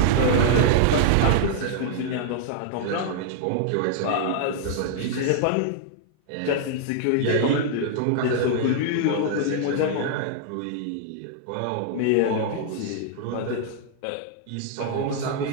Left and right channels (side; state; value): both; different; correlation -0.01